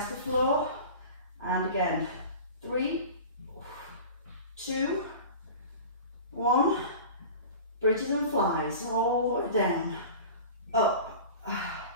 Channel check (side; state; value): both; inverted; correlation -0.36